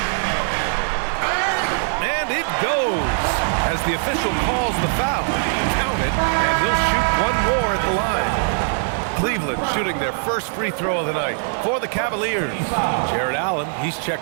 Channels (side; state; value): left; silent; digital silence